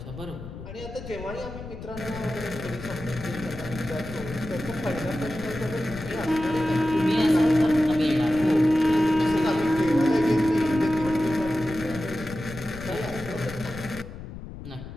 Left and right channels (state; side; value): noise; left; rumble, 12 dB below the sound